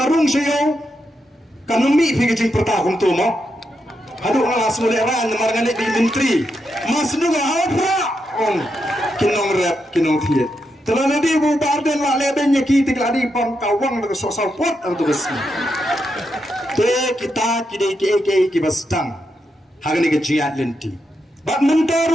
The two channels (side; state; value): both; normal; correlation 0.83